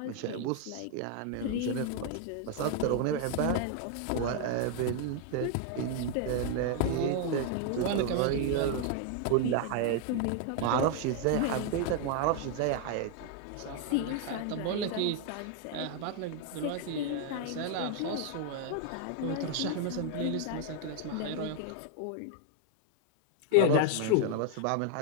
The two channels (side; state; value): both; different; correlation 0.00